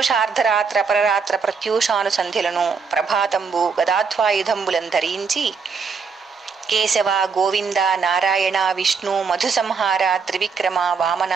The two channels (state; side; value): quieter; left; 5.5 dB